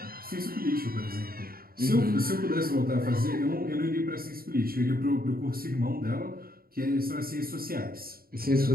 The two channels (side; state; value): left; late; 0.43 ms